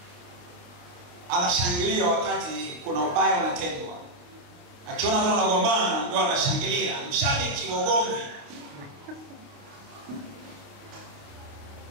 anashangilia wakati kuna ubaya unatendwa? Akiona watu wanagombana ndio anashangilia, mshabiki wa ugomvi.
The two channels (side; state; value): left; late; 29 ms